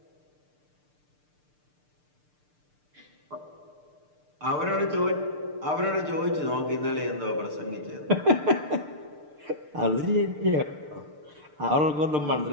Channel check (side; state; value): left; late; 6.7 ms